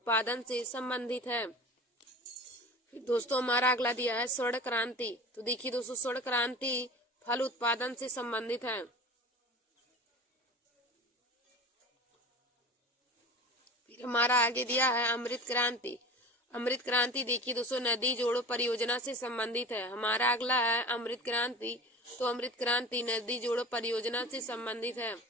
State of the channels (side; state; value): both; normal; correlation 0.36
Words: से संबंधित है। फिर दोस्तों हमारा अगला दिया है स्वर्ण क्रांति। तो देखिए दोस्तों स्वर्ण क्रांति फल उत्पादन से संबंधित है। फिर हमारा आगे दिया है अमृत क्रांति। अमृत क्रांति देखिए दोस्तों नदी जोड़ो परियोजना से संबंधित है। हमारा अगला है अमृत क्रांति। तो अमृत क्रांति नदी जोड़ो परियोजना से संबंधित है।